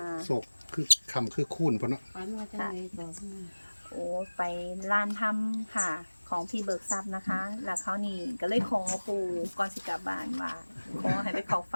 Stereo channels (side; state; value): both; inverted; correlation -1.00